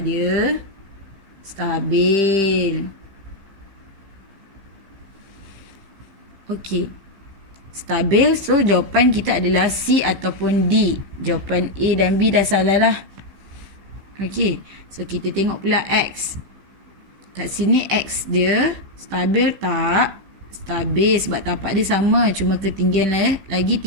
dia? Stabil. Okey. Stabil, so jawapan kita adalah C ataupun D. Jawapan A dan B dah salah lah. Okey, so kita tengok pula X. Kat sini X dia stabil tak? Stabil sebab tapak dia sama, cuma ketinggian lagi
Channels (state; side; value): late; left; 15 ms